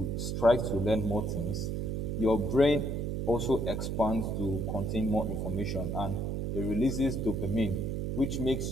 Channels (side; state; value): right; noise; hum, 1 dB below the sound